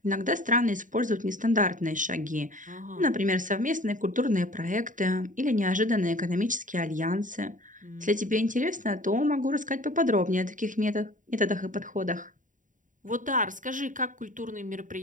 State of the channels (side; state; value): left; late; 0.38 ms